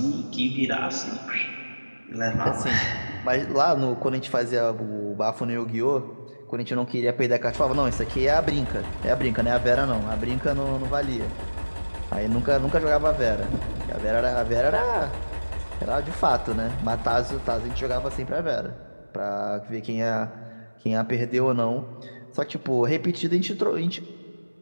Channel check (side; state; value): both; inverted; correlation -1.00